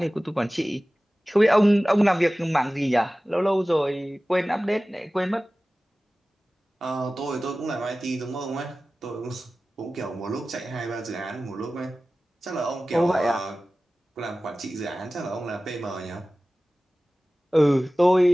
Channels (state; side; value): normal; both; correlation 0.97